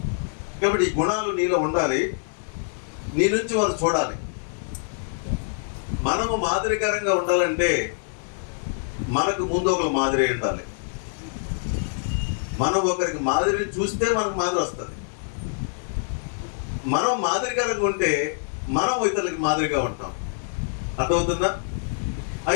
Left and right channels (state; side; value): silent; right; digital silence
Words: కాబట్టి ఈ గుణాలు నీలో ఉండాలి. నీ నుంచి వారు చూడాలి. మనము మాదిరికరంగా ఉండాలంటే మనకు ముందు ఒకరు మాదిరి ఉండాలి. మనం ఒకరికి మాదిరిని చూస్తే మనకు మాదిరి వస్తుంది. మనం మాదిరికరంగా ఉంటే మనం ఇతరులకి మాదిరిగా ఉంటాం. అర్థమవుతుందా?